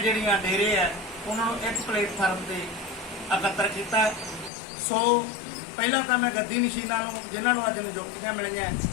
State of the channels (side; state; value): right; drops out; at 4.5 s